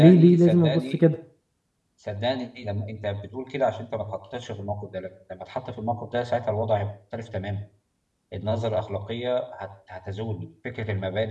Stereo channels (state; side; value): identical; both; correlation 1.00